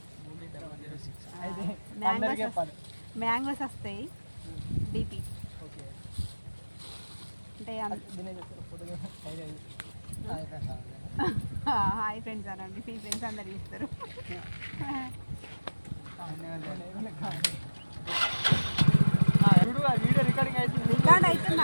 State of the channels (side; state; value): both; inverted; correlation -1.00